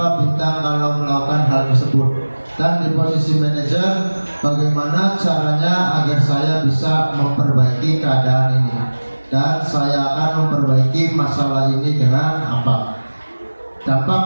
bintang kalau melakukan hal tersebut. Dan di posisi manajer, bagaimana caranya agar saya bisa memperbaiki keadaan ini, dan saya akan memperbaiki masalah ini dengan apa.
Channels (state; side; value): inverted; both; correlation -1.00